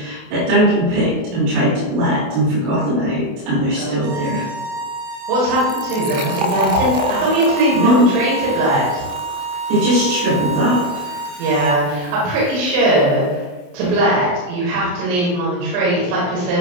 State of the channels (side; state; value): left; late; 28 ms